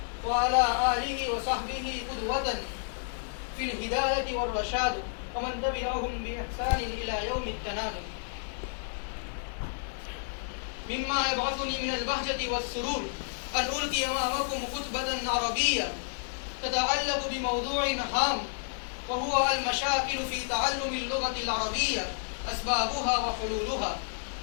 وعلى آله وصحبه قدوة في الهداية والرشاد، ومن تبعهم بإحسان إلى يوم التناد. مما يبعثني من البهجة والسرور أن ألقي أمامكم خطبة عربية تتعلق بموضوع هام، وهو المشاكل في تعلم اللغة العربية، أسبابها وحلولها.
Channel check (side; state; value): right; silent; digital silence